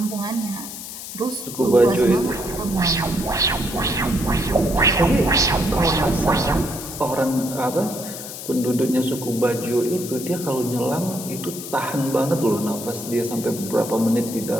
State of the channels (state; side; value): noise; left; hiss, 10 dB below the sound